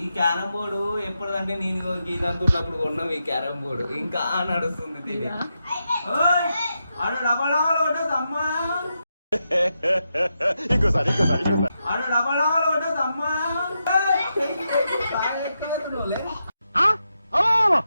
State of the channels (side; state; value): both; inverted; correlation -0.86